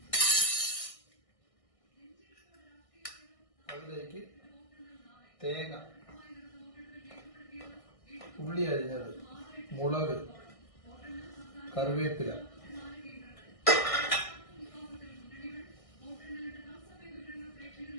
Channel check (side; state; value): right; late; 1.6 ms